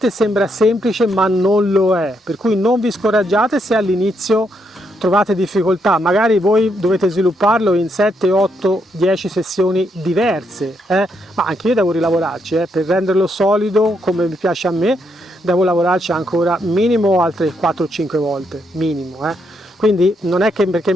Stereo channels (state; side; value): normal; both; correlation 0.77